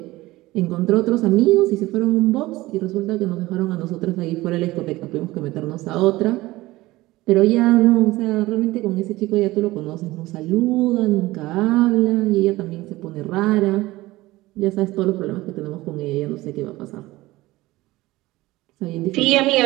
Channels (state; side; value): quieter; left; 18.7 dB